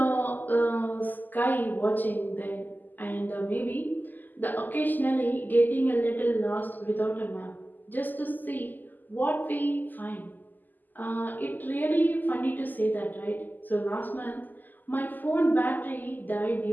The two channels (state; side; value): late; right; 0.086 ms